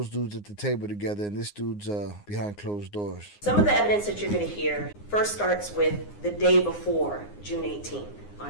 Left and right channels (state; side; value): late; right; 9.7 ms